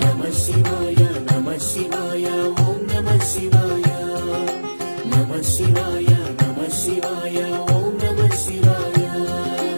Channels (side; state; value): both; inverted; correlation -1.00